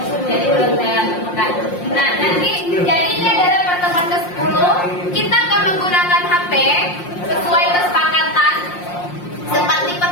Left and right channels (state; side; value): late; right; 5.6 ms